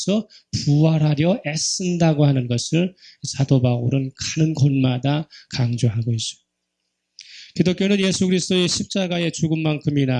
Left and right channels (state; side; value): identical; both; correlation 1.00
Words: 부활하려 애쓴다고 하는 것을 사도 바울은 가는 곳마다 강조하고 있어요. 기독교는 예수 그리스도의 십자가의